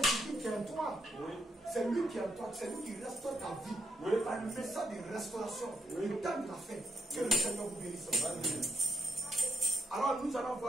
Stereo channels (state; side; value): normal; both; correlation 0.78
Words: Jésus qui est en toi. Oui. C'est lui qui est en toi. C'est lui qui restaure ta vie. Oui. Par le message de restauration. Oui. Le temps de la fête. Que le Seigneur vous bénisse. Alors nous allons